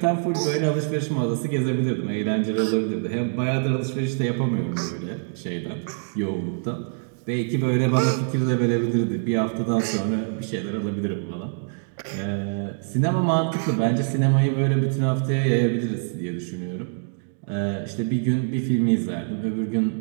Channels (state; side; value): silent; left; digital silence